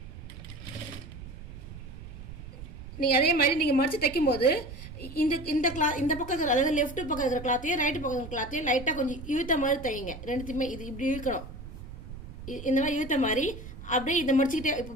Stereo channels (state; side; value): noise; right; rumble, 13 dB below the sound